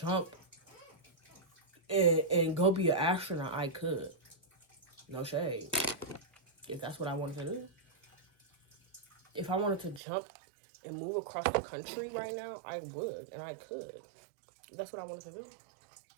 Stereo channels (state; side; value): drops out; left; at 10.0 s